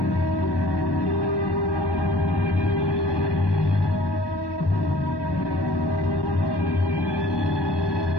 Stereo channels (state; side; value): late; right; 1.1 ms